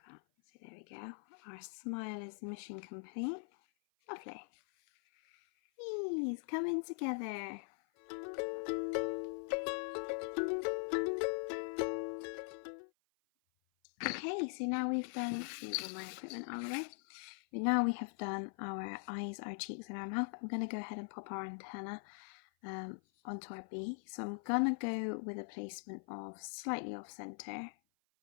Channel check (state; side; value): silent; right; 50 dB below the other